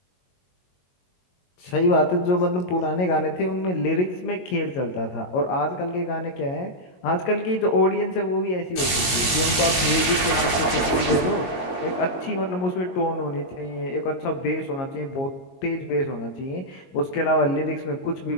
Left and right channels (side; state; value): right; late; 22 ms